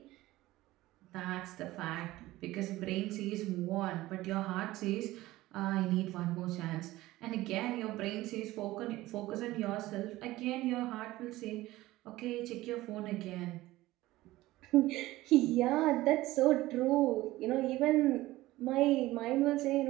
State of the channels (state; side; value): quieter; left; 17.4 dB